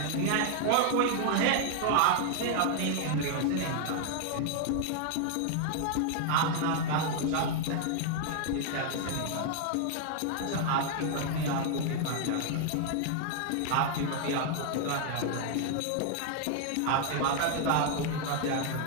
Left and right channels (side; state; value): both; different; correlation 0.00